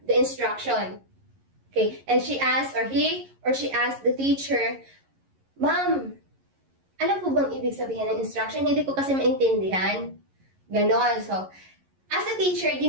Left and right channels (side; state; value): left; late; 11 ms